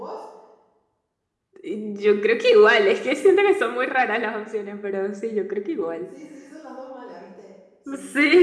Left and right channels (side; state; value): both; identical; correlation 1.00